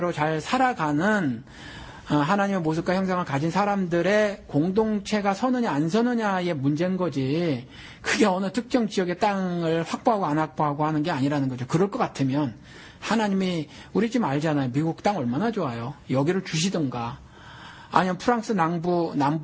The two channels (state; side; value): identical; both; correlation 1.00